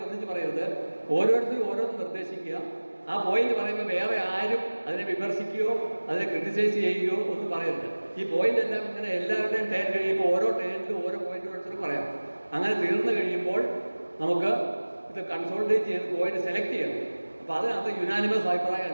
ഒന്നിച്ച് പറയരുത്. ഓരോരുത്തരും ഓരോന്ന് നിർദ്ദേശിക്കുക. ആ പോയിന്റ് പറയുമ്പോൾ വേറെ ആരും അതിനെ വിമർശിക്കുകയോ അതിനെ ക്രിട്ടിസൈസ് ചെയ്യുകയോ ഒന്നും പറയരുത്. ഈ പോയിന്റ് എല്ലാം ഇങ്ങനെ എല്ലാവരുടെയും ടേൺ കഴിയുമ്പോൾ ഓരോ ടേണിലും ഓരോ പോയിന്റ് ഓരോരുത്തരും പറയാം. അങ്ങനെ തീർന്നു കഴിയുമ്പോൾ നമുക്ക് ഇത് കൺസോൾട്ടേറ്റ് ചെയ്ത് പോയിന്റ് സെലക്ട് ചെയ്യണം. അപ്പോൾ അതിനകത്ത് യുനാനിമസ് അഭിപ്രായം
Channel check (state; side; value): inverted; both; correlation -1.00